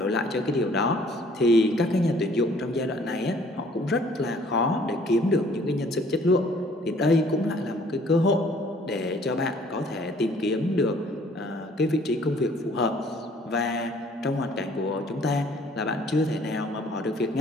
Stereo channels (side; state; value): both; normal; correlation 0.58